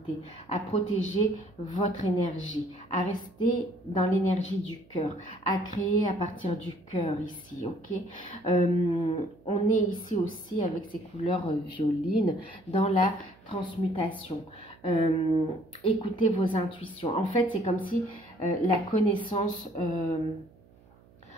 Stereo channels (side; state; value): right; noise; hum, 27 dB below the sound